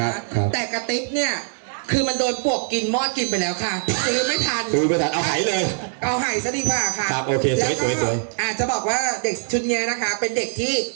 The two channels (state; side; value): silent; left; digital silence